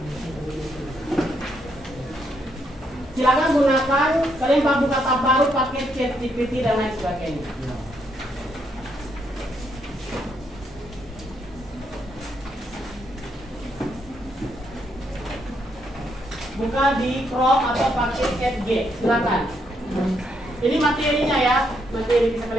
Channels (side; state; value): both; normal; correlation 0.76